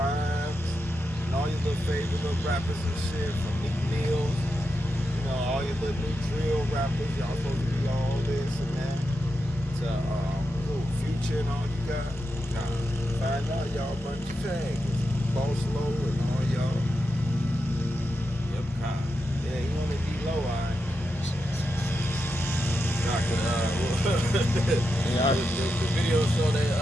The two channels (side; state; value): both; normal; correlation 0.87